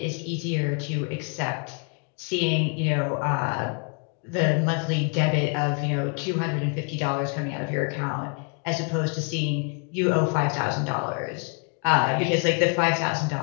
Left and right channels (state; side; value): quieter; right; 39.6 dB